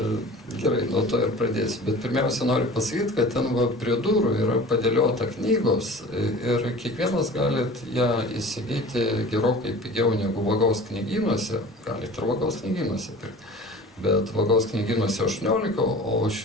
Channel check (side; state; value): both; normal; correlation 0.40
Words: Gerai, nuo to ir pradėsiu. Bet pirmiausia noriu pasakyti, kad ten prie durų yra padėliota knygos ir kiekvienas galit ją įsigyti gerokai pigiau negu Vagaus knygynuose, galit ir Vagaus knygynuose pirkti. Bet Vagaus knygynuose 18, o